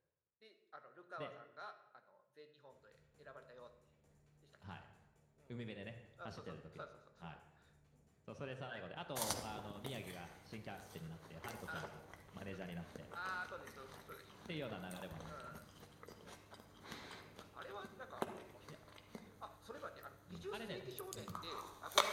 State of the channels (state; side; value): identical; both; correlation 1.00